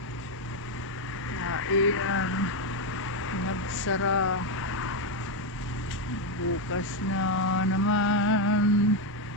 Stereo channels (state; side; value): normal; both; correlation 0.05